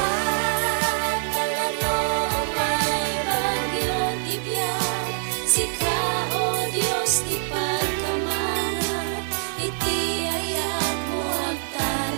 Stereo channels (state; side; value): silent; left; 59 dB below the other